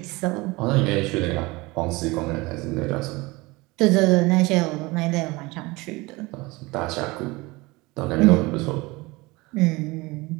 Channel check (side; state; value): left; quieter; 23.0 dB